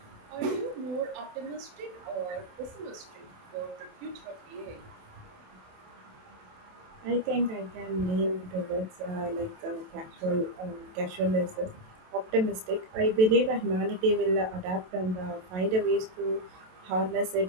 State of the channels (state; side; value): late; left; 27 ms